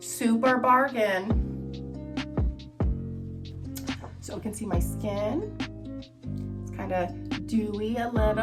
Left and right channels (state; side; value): identical; both; correlation 1.00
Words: bargain. So you can see my skin. It's kind of dewy, a